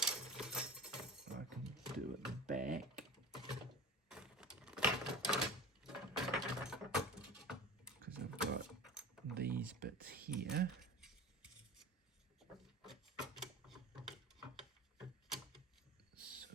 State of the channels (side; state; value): both; normal; correlation 0.34